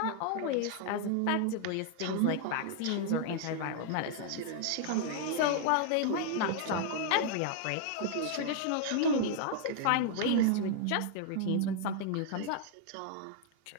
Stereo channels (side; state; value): both; different; correlation -0.01